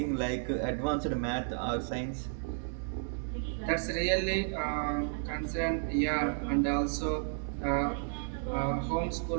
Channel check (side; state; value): left; silent; digital silence